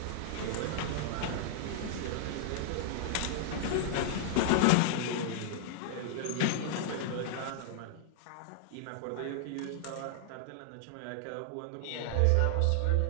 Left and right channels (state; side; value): different; both; correlation -0.01